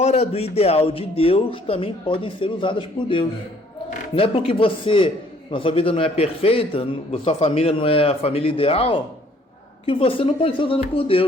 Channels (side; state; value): both; normal; correlation 0.61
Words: do ideal de Deus também podem ser usadas por Deus. Não é porque na sua vida não é perfeita, sua família não é a família ideal, que você não pode ser usado por